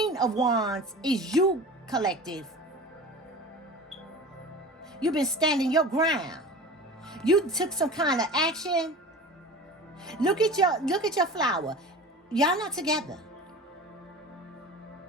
of Wands is you, collective. You've been standing your ground. You took some kind of action. Look at your flower. Y'all not together.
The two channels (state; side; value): normal; both; correlation 0.36